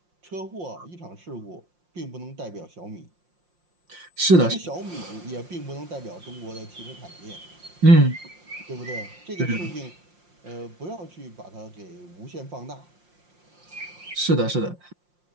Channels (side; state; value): left; late; 5.7 ms